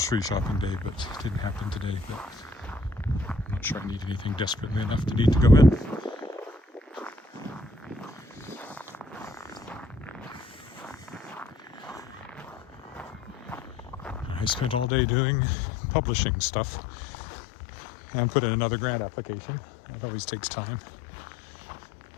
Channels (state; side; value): drops out; right; at 14.9 s